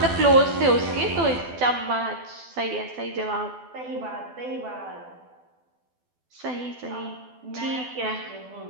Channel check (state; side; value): late; left; 12 ms